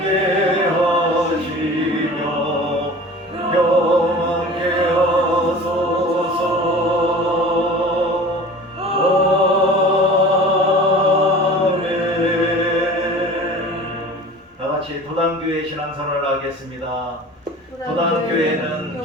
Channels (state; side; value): normal; both; correlation 0.40